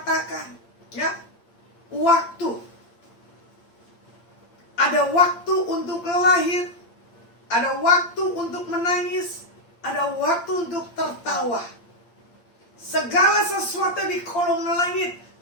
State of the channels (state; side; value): late; right; 8.7 ms